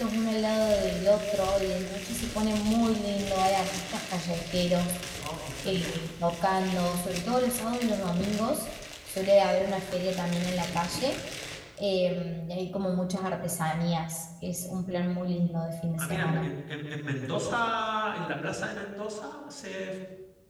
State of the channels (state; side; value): identical; both; correlation 1.00